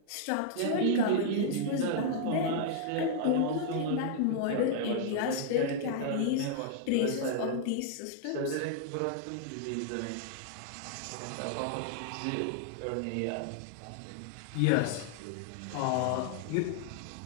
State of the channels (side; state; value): both; different; correlation -0.01